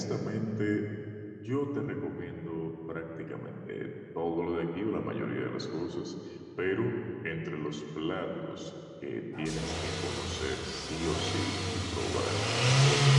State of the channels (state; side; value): identical; both; correlation 1.00